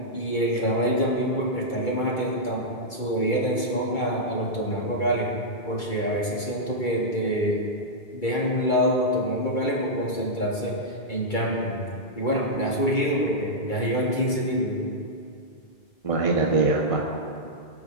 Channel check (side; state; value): right; late; 2.3 ms